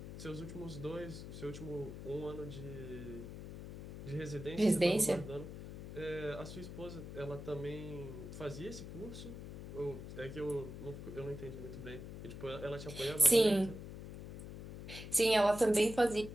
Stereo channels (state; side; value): noise; left; hum, 10 dB below the sound